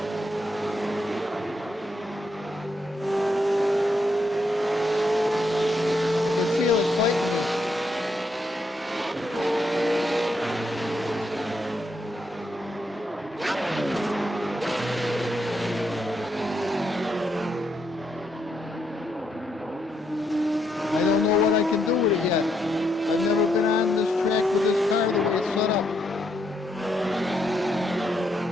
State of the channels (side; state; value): both; normal; correlation 0.78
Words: can feel it fighting me. I don't know what I can do with it yet. I've never been on this track with this car the way it's set up.